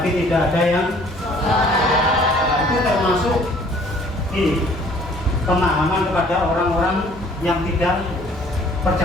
tidak ada yang itu termasuk ini pemahaman kepada orang-orang yang tidak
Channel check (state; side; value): normal; both; correlation 0.56